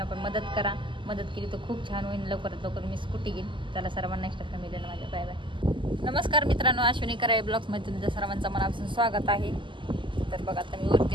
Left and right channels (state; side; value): late; left; 0.24 ms